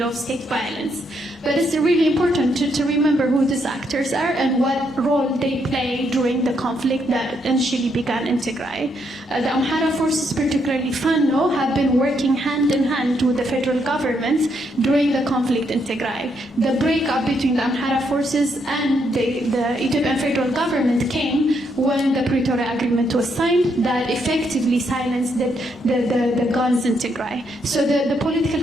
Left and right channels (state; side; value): normal; both; correlation 0.76